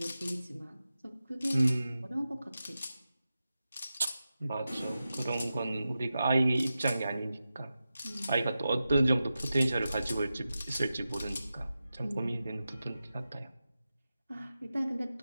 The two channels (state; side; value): inverted; both; correlation -0.92